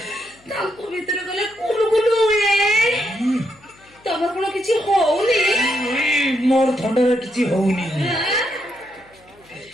ତାଙ୍କ ଭିତରେ ଗଲେ କୁଲୁ କୁଲୁ ହୁଏ ତମର କଣ କିଛି ହଉନି ମୋର ଥଣ୍ଡାରେ କିଛି ହଉନି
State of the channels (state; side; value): noise; left; hum, 29 dB below the sound